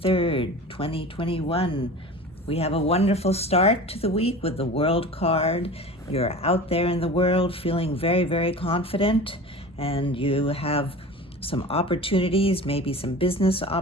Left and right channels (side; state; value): both; normal; correlation 0.36